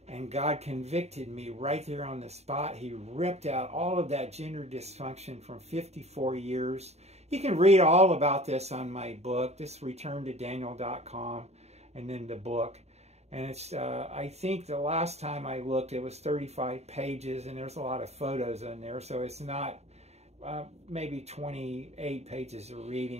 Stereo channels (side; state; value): left; late; 0.31 ms